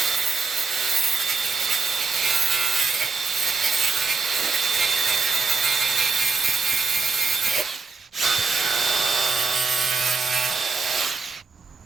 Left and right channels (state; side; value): quieter; left; 4.6 dB